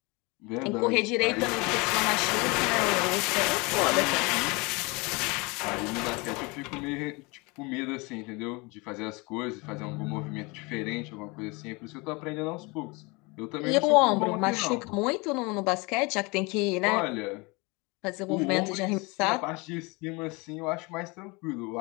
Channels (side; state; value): right; quieter; 26.9 dB